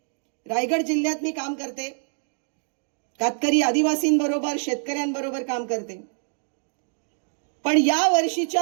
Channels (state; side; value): silent; left; 62 dB below the other